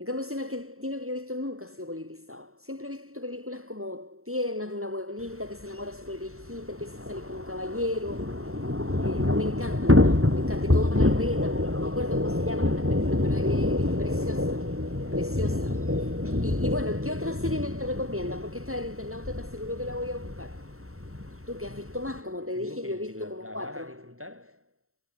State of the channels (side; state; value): left; late; 0.63 ms